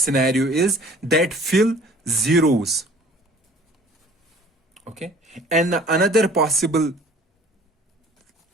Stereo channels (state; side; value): normal; both; correlation 0.51